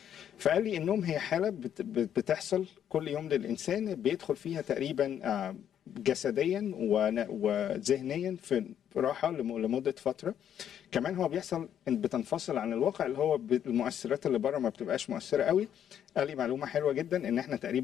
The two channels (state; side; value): quieter; right; 9.6 dB